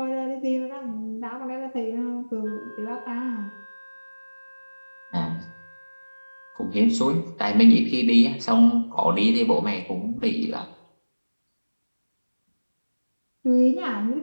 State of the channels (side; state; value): both; inverted; correlation -1.00